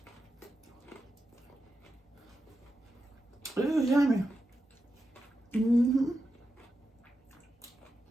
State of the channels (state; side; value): normal; both; correlation 0.89